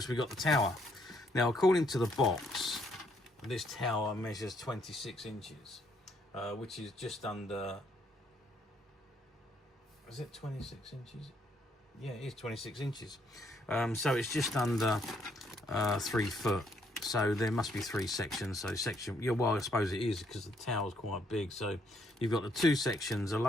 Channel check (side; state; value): both; normal; correlation 0.71